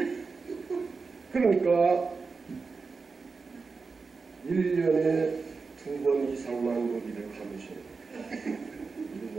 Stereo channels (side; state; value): left; quieter; 4.5 dB